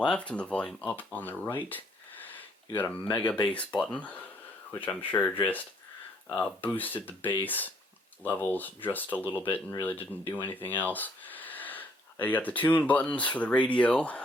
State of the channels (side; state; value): both; normal; correlation 0.66